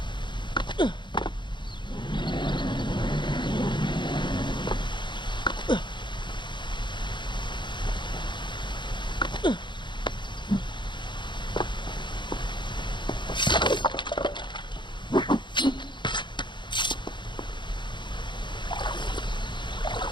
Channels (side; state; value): right; late; 0.22 ms